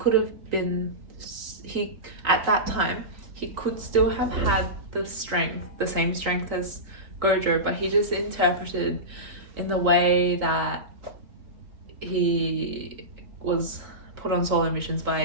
have been, he at that time he could still have had the strength, the same strength as Gojo, but he just interpreted in the way that he was put on solo missions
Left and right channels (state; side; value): late; left; 3.8 ms